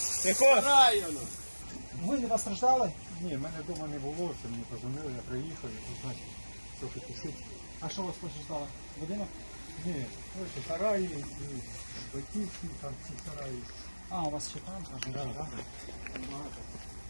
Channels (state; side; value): inverted; both; correlation -1.00